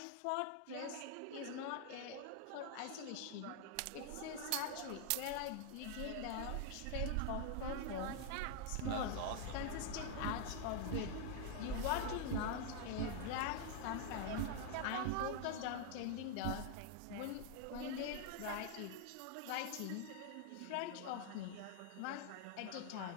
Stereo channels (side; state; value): both; different; correlation 0.00